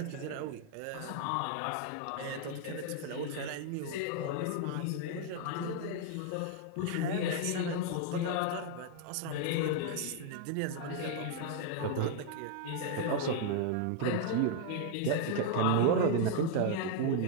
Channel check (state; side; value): different; both; correlation 0.00